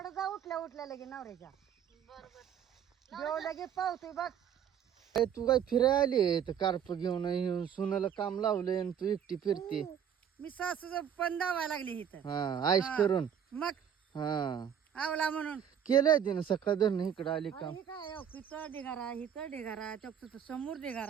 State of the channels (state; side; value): quieter; left; 8.7 dB